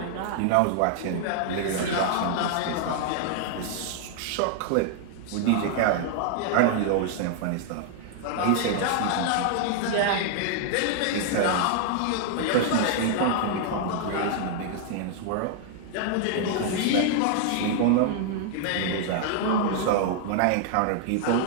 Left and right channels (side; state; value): both; different; correlation 0.00